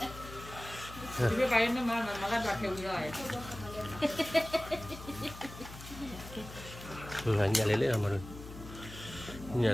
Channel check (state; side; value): noise; left; hum, 14 dB below the sound